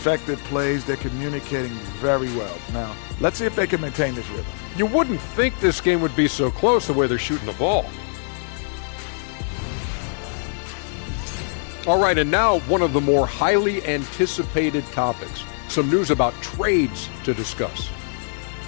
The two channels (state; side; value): silent; right; digital silence